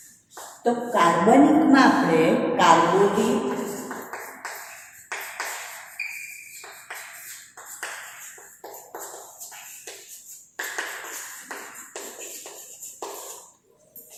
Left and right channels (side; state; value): both; identical; correlation 1.00